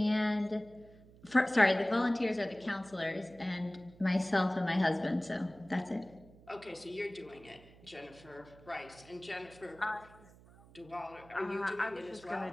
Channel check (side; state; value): right; noise; hum, 23 dB below the sound